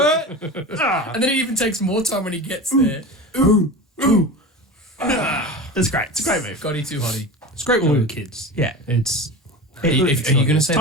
then it even takes more time when he gets there. That's great. It's a great move. Scotty too hotty. it's great when we were kids. Yeah. It's Are you going to say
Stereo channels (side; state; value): both; normal; correlation 0.30